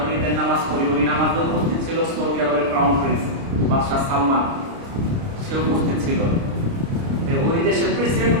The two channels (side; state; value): left; late; 29 ms